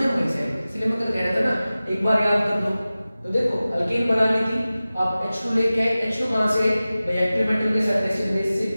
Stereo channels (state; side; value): inverted; both; correlation -0.96